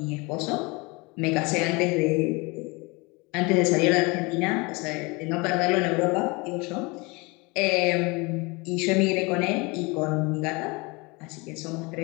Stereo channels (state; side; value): quieter; right; 26.7 dB